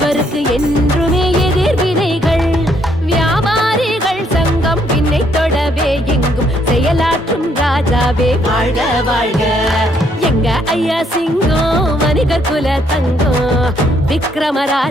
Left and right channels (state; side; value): normal; both; correlation 0.70